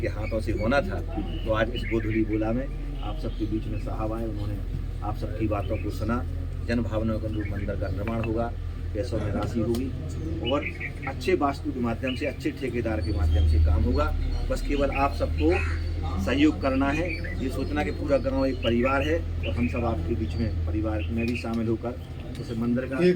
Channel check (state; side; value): identical; both; correlation 1.00